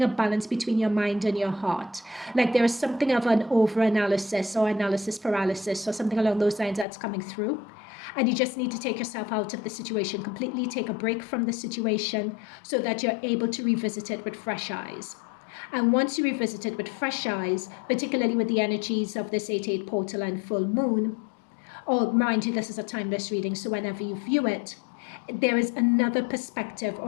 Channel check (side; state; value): right; drops out; at 6.9 s